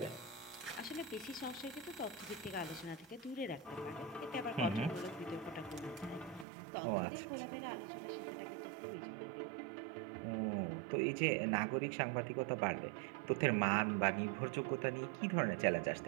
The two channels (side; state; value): left; drops out; at 6.5 s